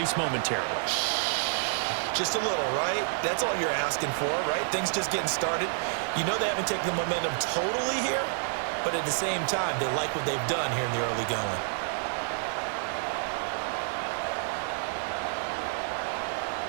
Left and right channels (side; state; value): left; silent; digital silence